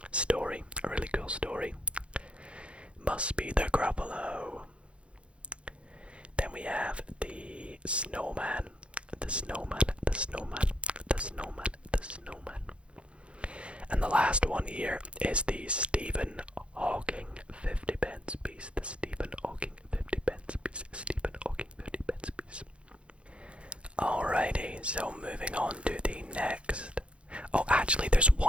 story, a really cool story. Must be the Gruffalo. Then we have the snowman, the snowman, the snowman, the snowman, the snowman. And the last one here is the Stephen Hawking 50 pence piece. The Stephen Hawking 50 pence piece. Stephen Hawking 50 pence piece. Alrighty, so moving on to the next. Oh, actually, there's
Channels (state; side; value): late; left; 0.059 ms